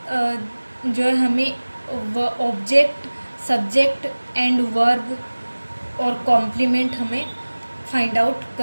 जो है हमें ऑब्जेक्ट, सब्जेक्ट एंड वर्ब और कॉम्प्लीमेंट हमें फाइंड आउट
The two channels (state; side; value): inverted; both; correlation -1.00